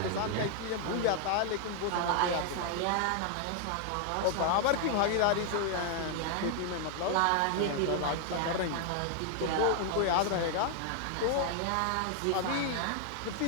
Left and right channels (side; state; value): both; different; correlation 0.00